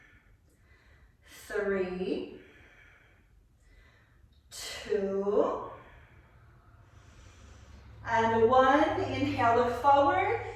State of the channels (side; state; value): both; identical; correlation 1.00